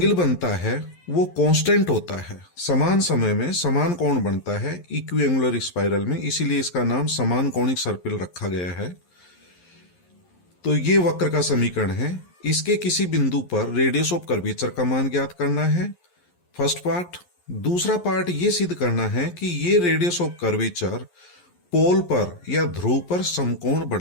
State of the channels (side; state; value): right; late; 11 ms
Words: बनता है वो कांस्टेंट होता है। समान समय में समान कोण बनता है इक्विएंगुलर स्पाइरल में, इसीलिए इसका नाम समान कोणिक सर्पिल रखा गया है। तो ये वक्र का समीकरण है। इसके किसी बिंदु पर रेडियस ऑफ कर्वेचर का मान ज्ञात करना है, फर्स्ट पार्ट। दूसरा पार्ट ये सिद्ध करना है कि ये रेडियस ऑफ कर्वेचर पोल पर या ध्रुव पर समकोण